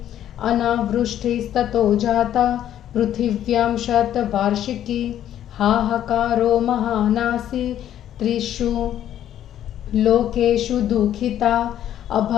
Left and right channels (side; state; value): right; quieter; 11.2 dB